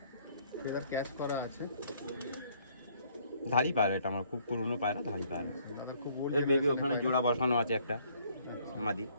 ফেদার ক্যাশ করা আছে, ধারি পায়রা, এটা আমার খুব পুরনো পায়রা, ধারি পায়রা। দাদা খুব ওল্ড এর বেবি ওখানে জোড়া বসানো আছে একটা মাদি।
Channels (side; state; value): both; inverted; correlation -0.64